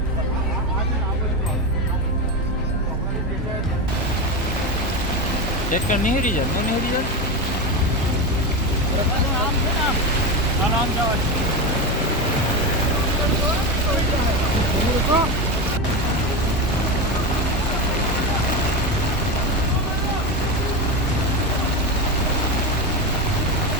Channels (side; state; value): right; noise; hum, 10 dB below the sound